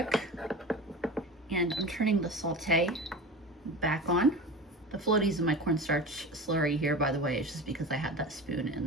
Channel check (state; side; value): normal; both; correlation 0.32